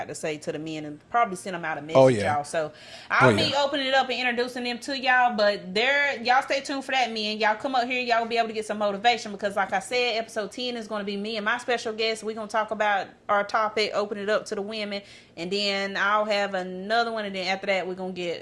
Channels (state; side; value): identical; both; correlation 1.00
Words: to say to the men, and probably send them out a message, y'all. So I'll be opening it up and introducing them to y'all, but y'all stay tuned for that, men. Y'all come up here, y'all will be able to get some motivation, because like I said, episode 10 is going to be me and my special guest. We're going to talk about our topic, open it up to the women, and then I'll have another one, and then after that, we're going to